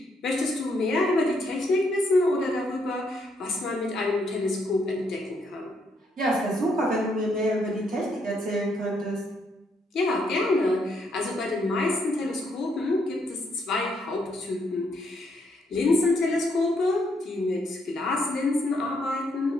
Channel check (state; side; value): normal; both; correlation 0.74